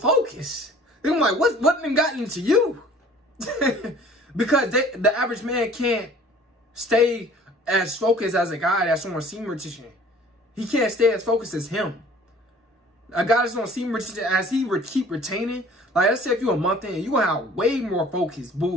I'm like, what done got into you? Because the average man can't stay as focused as a guy that's on semen retention. He can't stay as focused as him. A guy that's on semen retention, as he keep retaining, like let's say if you're a month in, you're gonna have way more focus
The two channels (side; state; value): both; normal; correlation 0.50